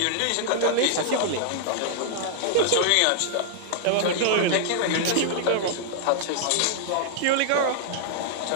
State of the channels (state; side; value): different; both; correlation -0.01